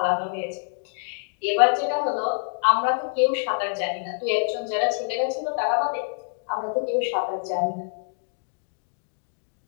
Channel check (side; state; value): right; silent; digital silence